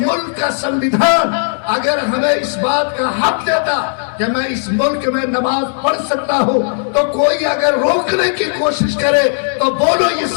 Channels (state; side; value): silent; right; digital silence